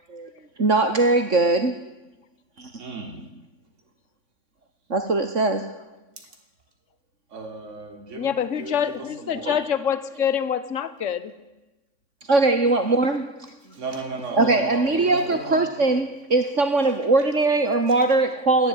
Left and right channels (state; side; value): late; left; 3.6 ms